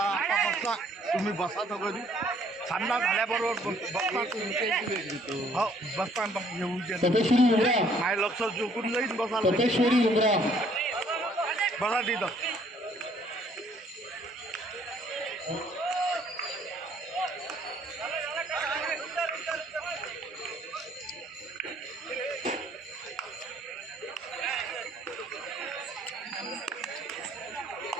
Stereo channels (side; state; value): both; normal; correlation 0.62